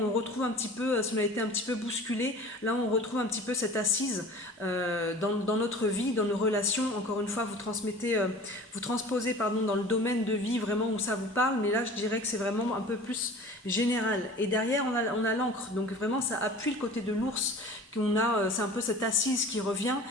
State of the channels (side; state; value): both; normal; correlation 0.42